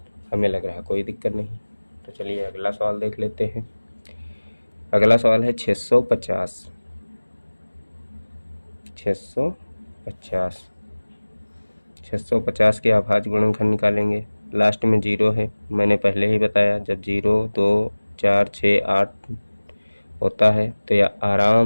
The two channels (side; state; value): both; inverted; correlation -1.00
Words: हमें लग रहा कोई दिक्कत नहीं। तो चलिए अगला सवाल देख लेते हैं। अगला सवाल है 650। 650 के अभाज्य गुणनखंड निकालेंगे। लास्ट में 0 है, मैंने पहले ही बताया, जब 0 2 4 6 8 होता है तो यह